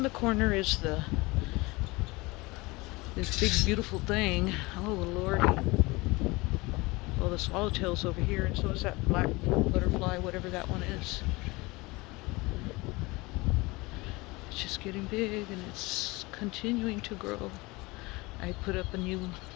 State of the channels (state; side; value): quieter; right; 23.3 dB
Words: the corner is this big beautiful thing. Oh, Lordy. Well, the swallowtail's over here, and so is that black butterfly, whatever that one is. It's just getting big, and it's continuing to grow. I put up a new